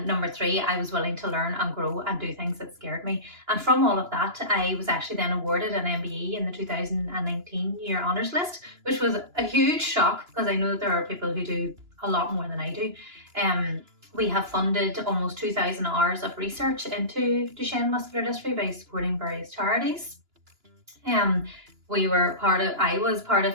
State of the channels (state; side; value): late; left; 2.9 ms